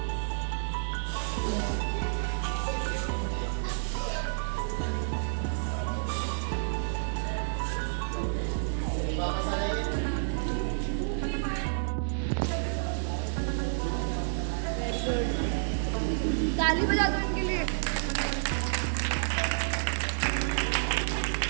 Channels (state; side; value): silent; left; 58 dB below the other